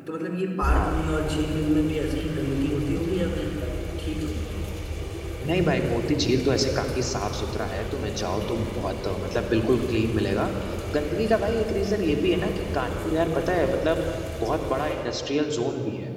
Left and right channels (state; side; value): identical; both; correlation 1.00